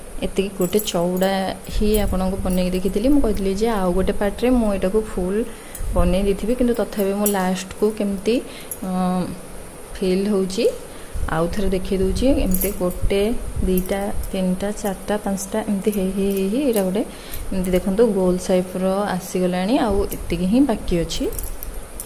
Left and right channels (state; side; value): identical; both; correlation 1.00